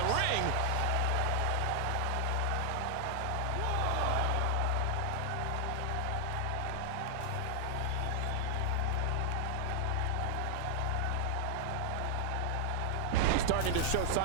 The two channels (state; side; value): different; both; correlation 0.00